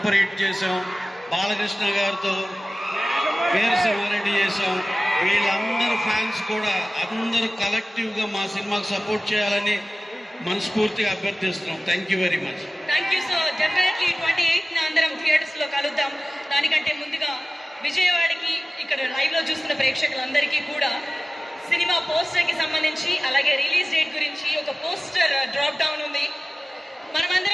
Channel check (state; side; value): normal; both; correlation 0.97